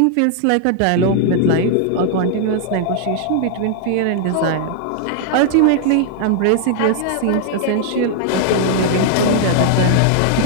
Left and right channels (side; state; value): both; different; correlation 0.00